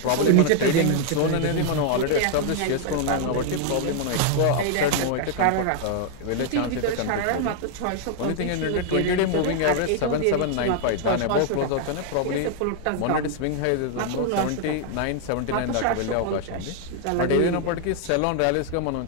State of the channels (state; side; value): different; both; correlation 0.00